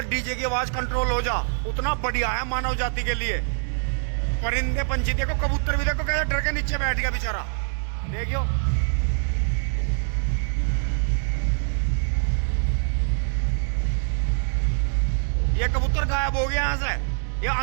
डीजे की आवाज कंट्रोल हो जा उतना बढ़िया है मानव जाति के लिए। परिंदे पंछी देखो, कबूतर भी देखो कैसे डर के नीचे बैठ गया बेचारा, देखियो। ये कबूतर गायब हो गया यहाँ से, ये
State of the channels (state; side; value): silent; left; digital silence